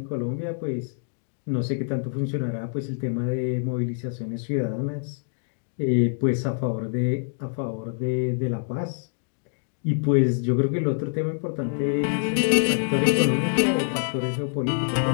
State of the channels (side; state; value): right; silent; digital silence